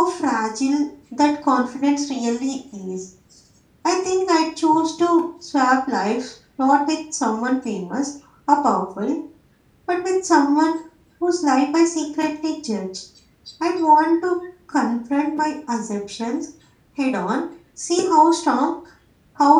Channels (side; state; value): both; identical; correlation 1.00